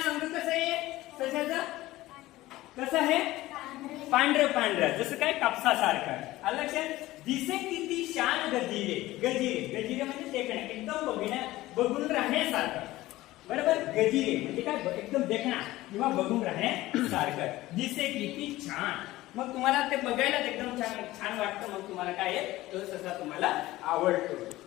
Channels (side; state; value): right; quieter; 17.2 dB